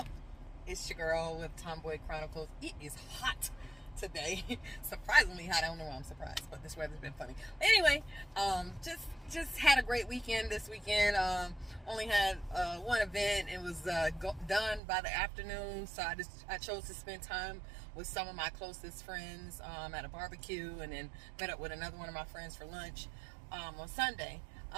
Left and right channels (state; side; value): drops out; left; at 14.8 s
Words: It's your girl with Tomboy Chronicles. It is hot today. Surprisingly hot. I don't know why I'm surprised, but this weather's been funny. Anyway, just had a great weekend this weekend. Only had one event. It was done by the afternoon, so I chose to spend time with some of my closest friends at a barbecue, and then met up with another one of my friends for lunch on Sunday.